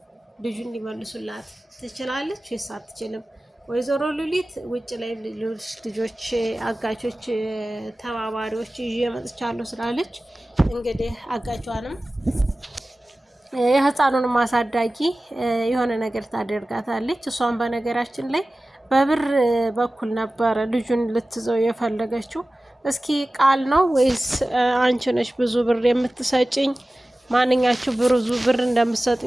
ልጁን ሊመልሱላት ትችላለች ወይስ አትችልም? ወይዘሮ ሉሊት ውጭ ላይ ልጆች አጋቾች ተባባሪዎች ይዤ መጥቻለሁ ስላለች እንግዲህ አጋቿንም የህፃኑንም አሳዳጊ የሆነ ነገር ታደርጋታለች። እሷን በነገራችን ላይ በብር በኩል ነበረ ልጁን ልትዘው የፈለገችው። እስኪ ቃል ነው ወይስ አንቺ ነሽ ብዙ ብር የምትሰጭኝ? ማንኛችሁ ብዙ ብር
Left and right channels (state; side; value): normal; both; correlation 0.96